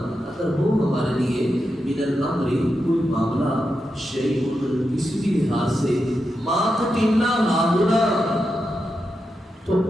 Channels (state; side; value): normal; both; correlation 0.87